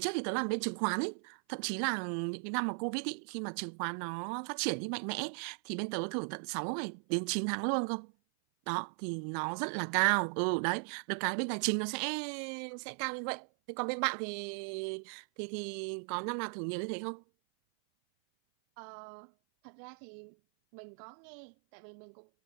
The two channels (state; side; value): silent; left; 53 dB below the other